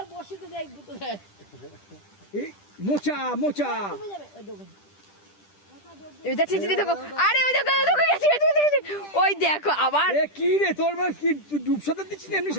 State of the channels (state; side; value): late; right; 10 ms